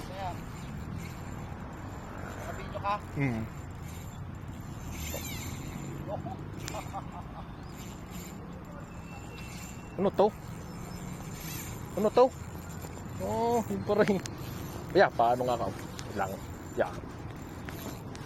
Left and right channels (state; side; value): identical; both; correlation 1.00